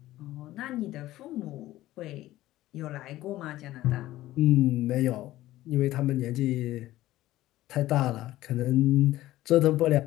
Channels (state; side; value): quieter; right; 15.7 dB